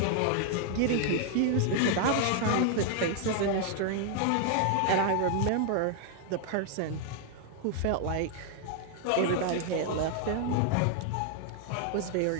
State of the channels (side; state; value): both; different; correlation 0.00